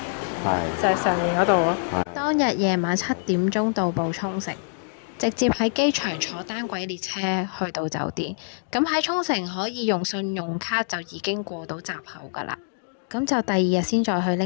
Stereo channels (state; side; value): silent; right; digital silence